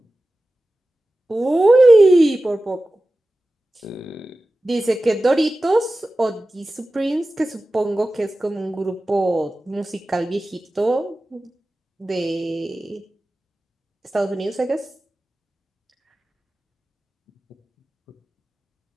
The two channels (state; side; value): normal; both; correlation 0.95